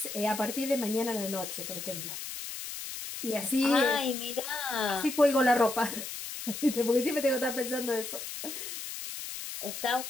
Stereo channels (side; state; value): left; noise; hiss, 8 dB below the sound